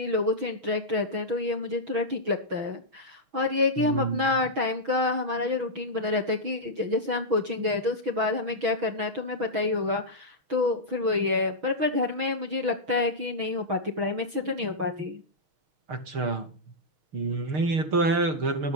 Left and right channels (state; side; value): late; left; 6.1 ms